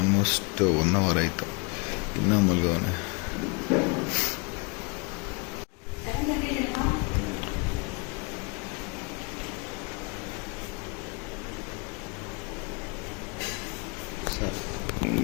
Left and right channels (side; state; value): right; quieter; 32.1 dB